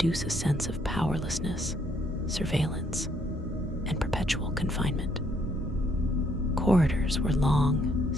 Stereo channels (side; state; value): both; normal; correlation 0.69